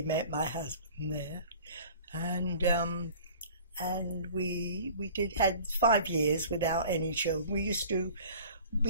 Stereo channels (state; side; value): inverted; both; correlation -0.45